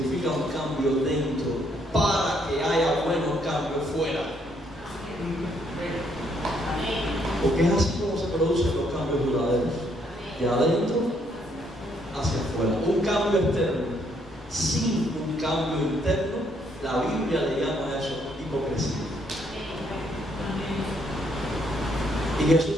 un cambio dentro para que haya buenos cambios fuera. Porque es así como se producen los cambios duraderos, de adentro hacia afuera. Un cambio externo sin un cambio interno, la Biblia le llama a eso hipocresía. Y Jesús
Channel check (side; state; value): both; normal; correlation 0.71